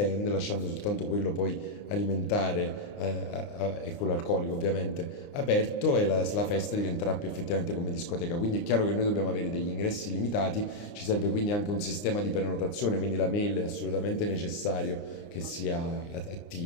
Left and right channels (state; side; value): late; right; 29 ms